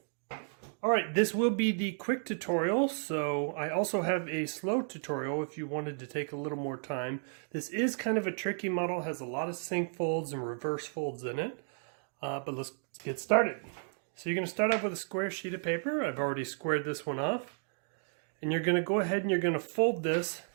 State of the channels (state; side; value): silent; left; 56 dB below the other